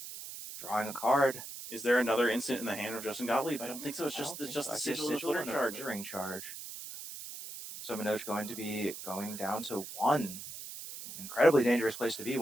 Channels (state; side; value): noise; right; hiss, 10 dB below the sound